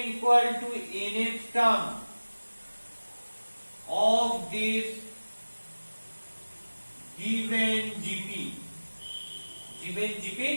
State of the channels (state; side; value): inverted; both; correlation -1.00